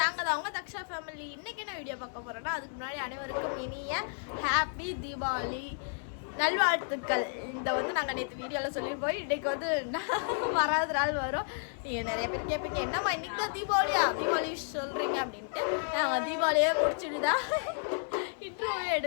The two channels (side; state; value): right; silent; 55 dB below the other